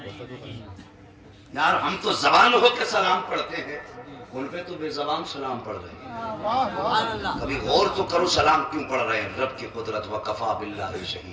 यार हम तो जबान होकर सलाम पढ़ते हैं, उन पे तो बेजबान सलाम पढ़ रहे हैं। कभी गौर तो करो सलाम क्यों पढ़ रहे हैं। रब की कुदरत व कफा बिल्लाहि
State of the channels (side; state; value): both; identical; correlation 1.00